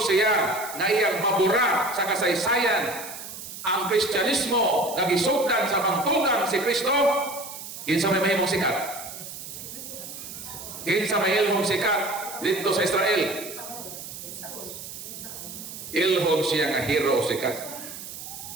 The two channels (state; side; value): noise; right; hiss, 11 dB below the sound